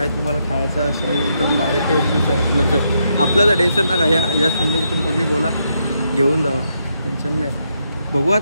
तुम्हाला खायचं असं एकदम भारी टेस्ट आहे. आपल्याचं टेन्शन नका. या संदर्भातून कोणी बोला घेऊन जावा. टेन्शन नाही. बघू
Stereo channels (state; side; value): inverted; both; correlation -0.79